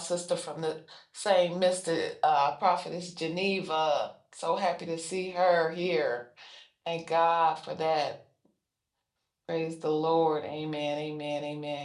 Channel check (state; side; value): identical; both; correlation 1.00